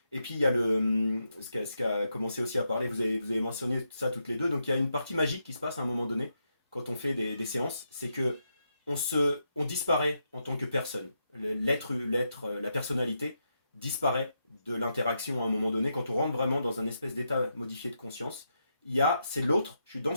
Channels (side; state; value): both; inverted; correlation -0.83